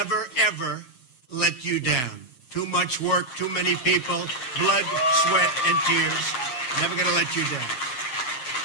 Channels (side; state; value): right; late; 8.2 ms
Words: ever let you down. Too much work, too many people, blood, sweat, and tears. Never going to let you down.